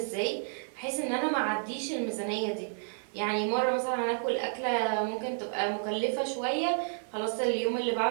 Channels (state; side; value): silent; left; 57 dB below the other